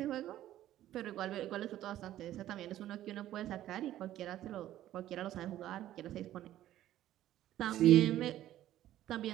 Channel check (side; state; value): left; quieter; 13.2 dB